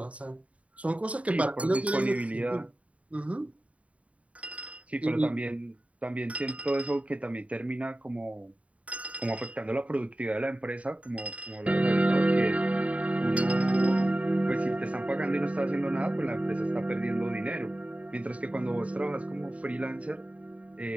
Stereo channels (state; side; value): late; left; 0.066 ms